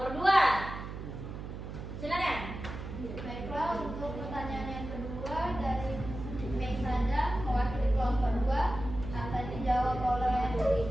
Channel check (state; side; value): noise; right; hum, 8 dB below the sound